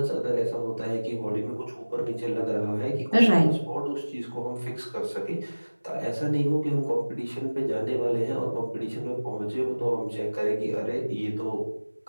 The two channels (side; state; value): both; inverted; correlation -1.00